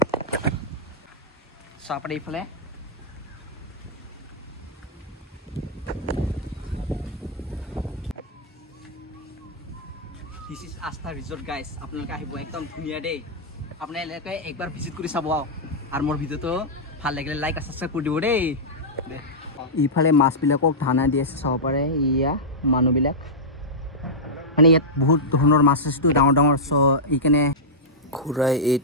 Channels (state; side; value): normal; both; correlation -0.10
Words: চাব পাৰে এইফালে দিছ ইজ আস্থা ৰিজৰ্ট গাইজ আপোনালোকে আহিব একদম ধুনীয়া দেই আপোনালোকে একবাৰ ভিজিট কৰি চাব আৰু মোৰ ভিডিঅ'টো ভাল লাগিলে লাইক আৰু ছাবস্ক্ৰাইব কৰি দিব দেই ইফালে মাছবিলাকক ধানা দি আছে চাব পাৰে ইয়া মানুহবিলাক মানে ইয়াত বহুত ধৰণৰ মাছ আছেতো ডাঙৰ ডাঙৰ চ' এইকাৰণে খুৰাই